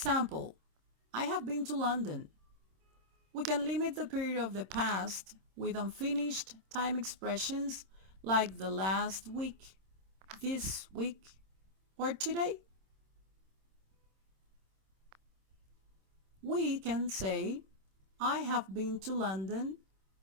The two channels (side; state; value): left; late; 26 ms